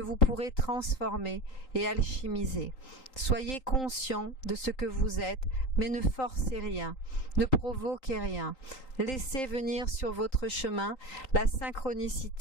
pourrez transformer et alchimiser. Soyez conscient de ce que vous êtes, mais ne forcez rien, ne provoquez rien. Laissez venir sur votre chemin la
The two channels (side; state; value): right; late; 3.8 ms